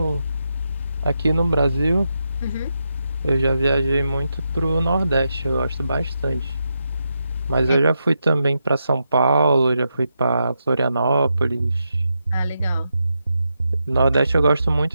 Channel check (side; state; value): both; inverted; correlation -0.85